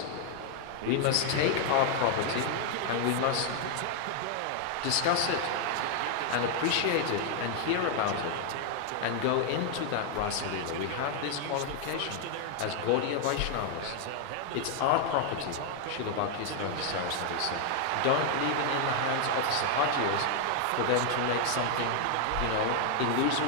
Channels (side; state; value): both; different; correlation 0.00